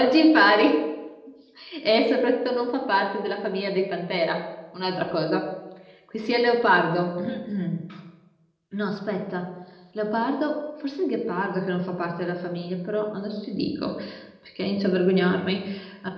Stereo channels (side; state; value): both; identical; correlation 1.00